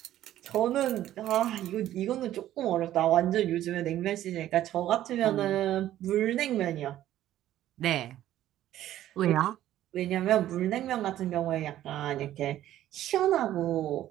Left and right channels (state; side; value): quieter; left; 12.9 dB